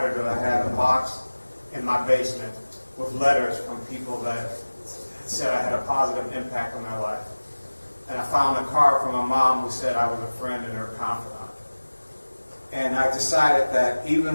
was I had a box in my basement with letters from people that said I had a positive impact on their life. And I found a card from my mom who said I was a friend and her confidant. And I decided that even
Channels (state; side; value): inverted; both; correlation -1.00